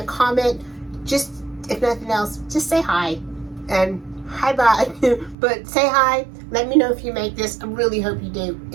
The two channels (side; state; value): left; drops out; at 5.4 s